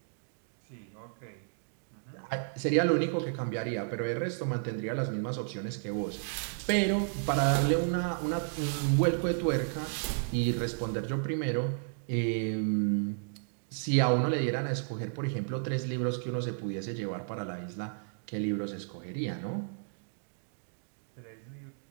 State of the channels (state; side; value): silent; left; digital silence